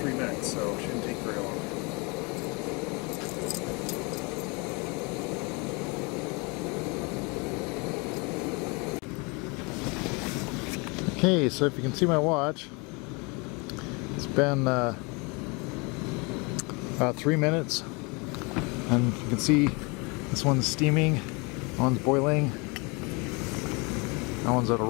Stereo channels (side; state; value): right; quieter; 29.3 dB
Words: minutes, so it shouldn't take very long. Okay, so if you can see my watch, it's been about 3 minutes, and you can see this one's steaming, that one's boiling, that one's at a